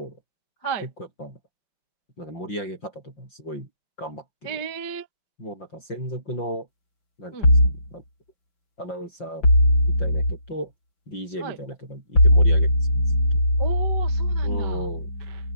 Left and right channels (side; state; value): right; late; 5.7 ms